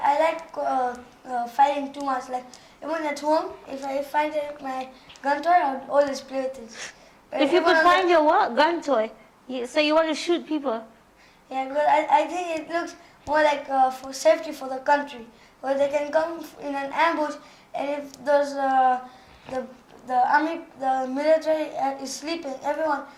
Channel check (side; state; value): both; identical; correlation 1.00